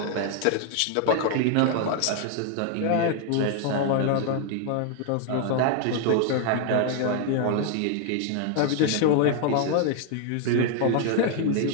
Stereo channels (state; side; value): different; both; correlation 0.00